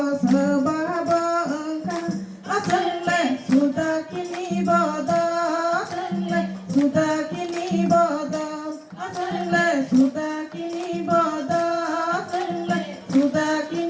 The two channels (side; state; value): both; identical; correlation 1.00